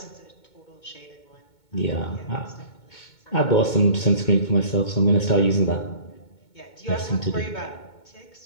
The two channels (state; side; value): late; right; 2.2 ms